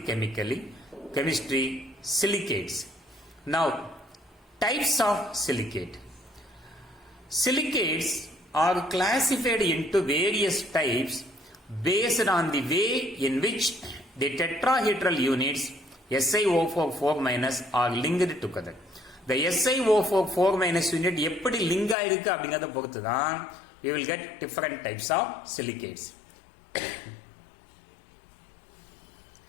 chemistry silicates. Now, types of silicate. Silicates are classified into various types based on the way in which the tetrahedral units SiO4 4- are linked together. The SiO4 4- unit எப்படி link ஆயிருக்கு அப்படிங்கறத பொறுத்து தான் we will get different types of silicates.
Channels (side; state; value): right; drops out; at 22.0 s